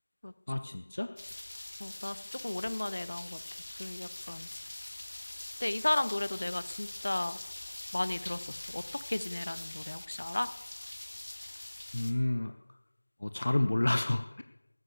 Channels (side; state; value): both; inverted; correlation -1.00